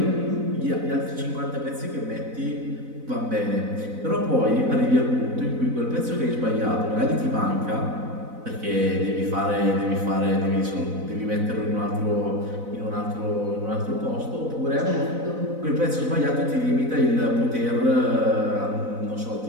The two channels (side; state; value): left; late; 4.0 ms